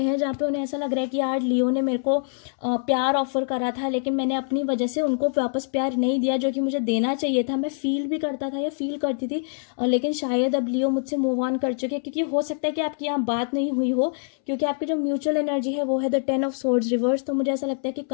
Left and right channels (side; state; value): right; silent; 62 dB below the other